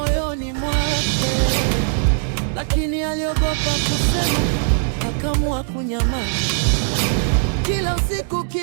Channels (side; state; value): left; silent; digital silence